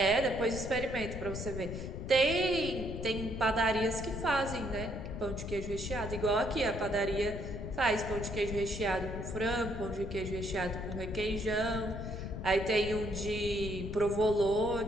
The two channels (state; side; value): noise; left; rumble, 7 dB below the sound